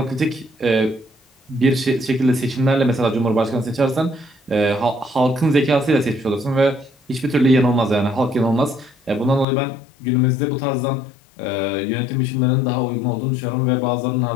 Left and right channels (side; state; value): right; drops out; at 9.5 s